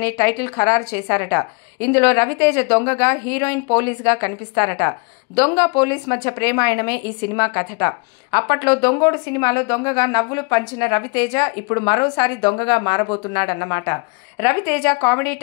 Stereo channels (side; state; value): right; quieter; 32.7 dB